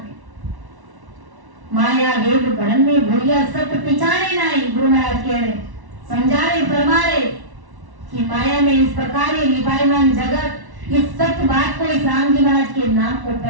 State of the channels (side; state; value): left; late; 1.1 ms